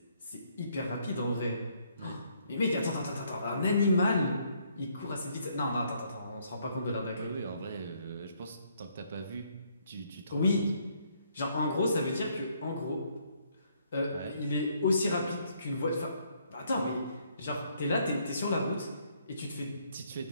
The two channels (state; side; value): inverted; both; correlation -0.69